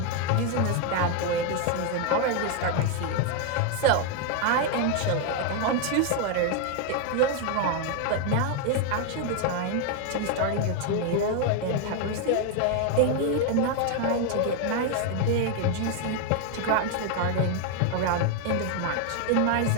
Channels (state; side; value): different; both; correlation 0.01